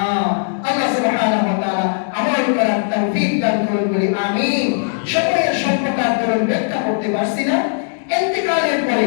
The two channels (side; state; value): right; silent; digital silence